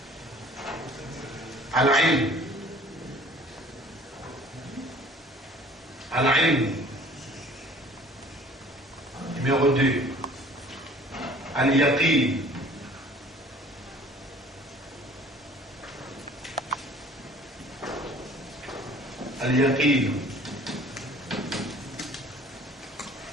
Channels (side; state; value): both; normal; correlation 0.51